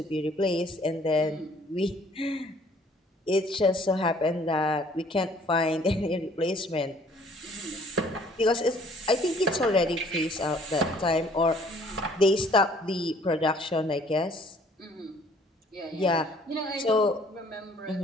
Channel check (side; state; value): both; normal; correlation 0.58